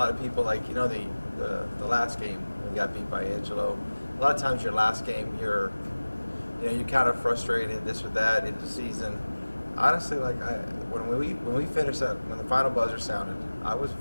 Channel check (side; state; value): both; inverted; correlation -1.00